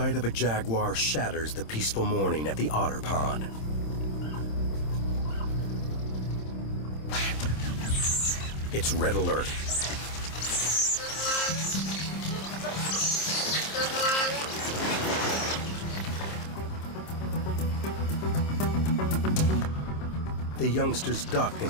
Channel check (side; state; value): right; late; 26 ms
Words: of a jaguar shatters the peaceful morning at the otter pond. It's red alert. The youngsters duck